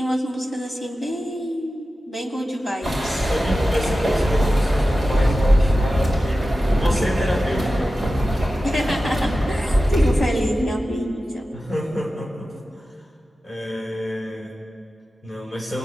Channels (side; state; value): both; normal; correlation 0.94